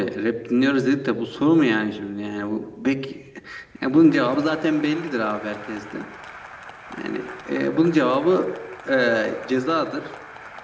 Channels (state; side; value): identical; both; correlation 1.00